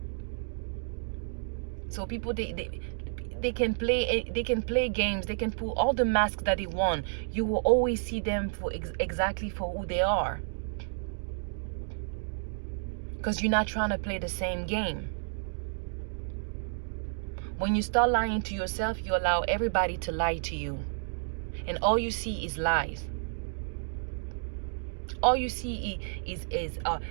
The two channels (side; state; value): left; silent; digital silence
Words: So people, they can play games, they can pull all the masks that they want. You will always see them for exactly for who they are, because you're not trying to play the same game. When you start lying to yourself, you allow everybody to lie to you, and all you see is lies. All you see is